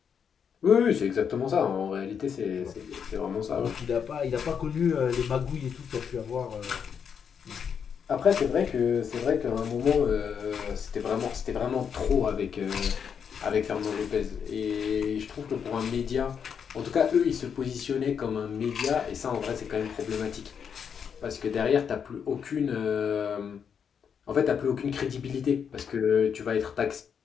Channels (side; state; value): right; quieter; 7.2 dB